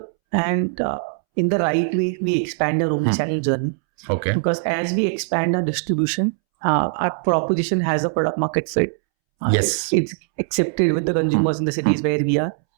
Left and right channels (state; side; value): silent; left; 65 dB below the other